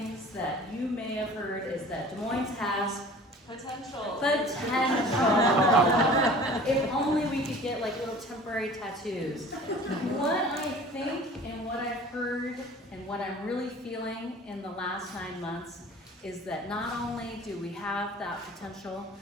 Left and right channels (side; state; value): both; normal; correlation 0.45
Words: that you may have heard is that Des Moines has potential. If only we could get like little temporary tattoos. What I think and what I've heard and what I'm really feeling in the last 9 months is that not only do we have that potential,